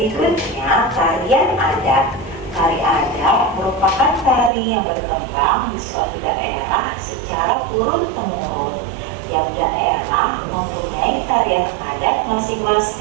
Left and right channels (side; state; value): left; drops out; at 4.5 s